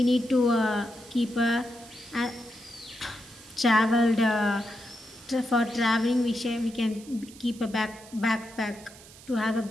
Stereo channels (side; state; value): right; noise; hiss, 20 dB below the sound